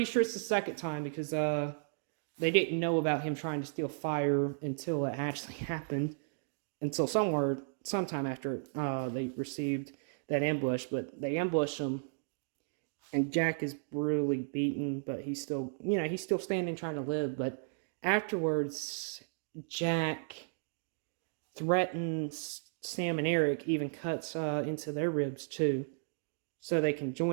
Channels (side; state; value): left; silent; digital silence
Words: sure it's the second time, because they didn't know about him trying to steal fire until it actually happened, until sometime after they received that ambush. But they ambush him, and Jack is brutally beaten, but he's still standing, trying to live. But afterwards, Jack threatens Sam and Eric, even cuts into their ribs too, so they can